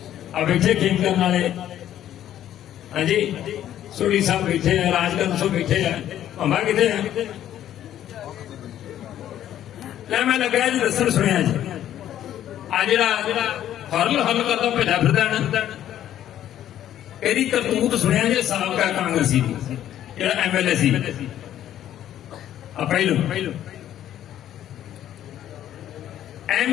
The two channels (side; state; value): right; quieter; 11.6 dB